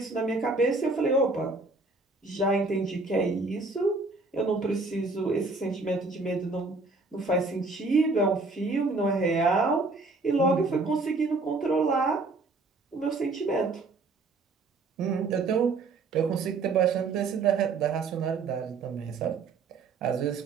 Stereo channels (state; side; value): quieter; left; 3.7 dB